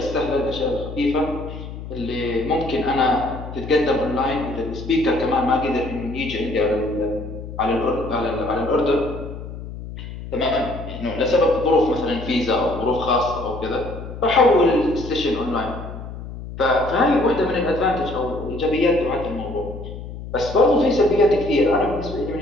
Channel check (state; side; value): noise; left; hum, 10 dB below the sound